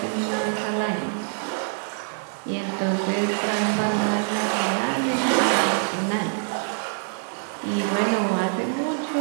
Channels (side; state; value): left; silent; 62 dB below the other